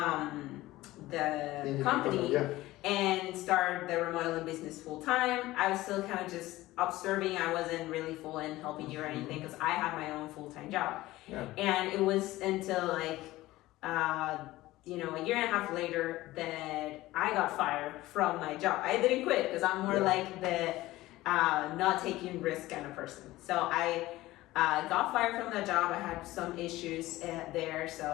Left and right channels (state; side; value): quieter; right; 17.4 dB